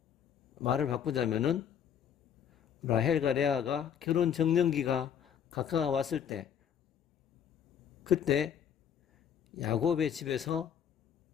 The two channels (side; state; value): right; quieter; 8.5 dB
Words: 말을 바꾸자면은 라헬과 레아가 결혼 정년기가 가까워왔을 때, 그때 야곱의 집에서